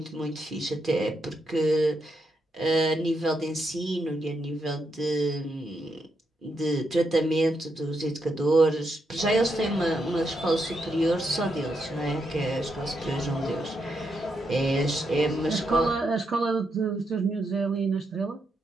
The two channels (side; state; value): both; normal; correlation 0.81